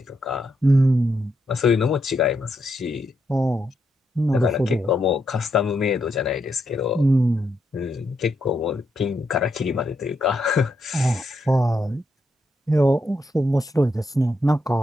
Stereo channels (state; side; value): normal; both; correlation 0.80